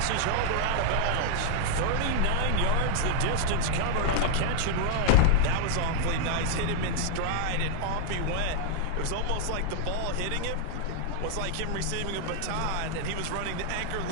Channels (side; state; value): both; different; correlation 0.00